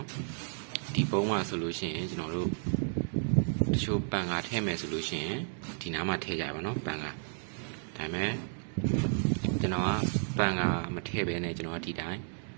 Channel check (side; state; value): left; silent; 56 dB below the other